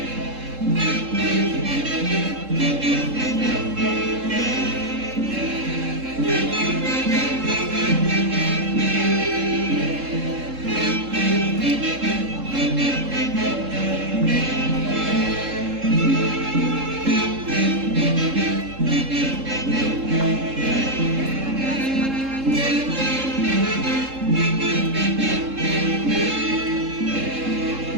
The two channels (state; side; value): late; left; 3.7 ms